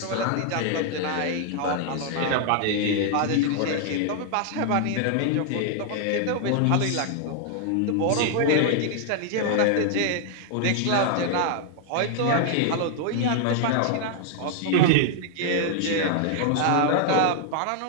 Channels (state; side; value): different; both; correlation 0.00